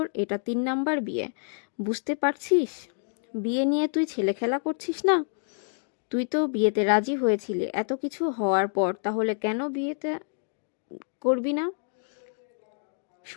এটা 3 নাম্বার বিয়ে, বুঝতে পারছিস? বিয়ে নিয়ে তুই ছেলে খেলা করছিস না? তুই তো বিয়েতে রাজি হয়েছিলি, এত কিছু হওয়ার পর তাহলে কেন বিয়েতে করবি না?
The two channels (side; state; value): right; silent; 60 dB below the other